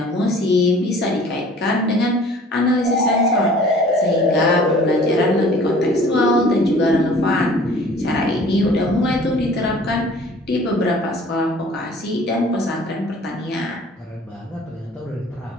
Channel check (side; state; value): both; normal; correlation 0.50